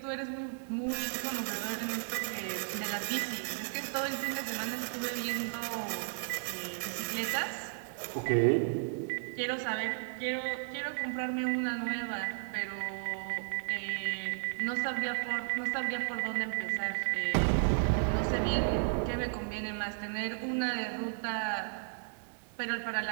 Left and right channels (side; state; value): left; silent; digital silence